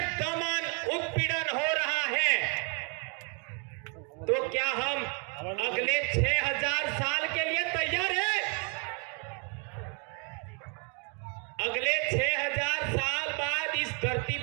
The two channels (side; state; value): left; quieter; 37.6 dB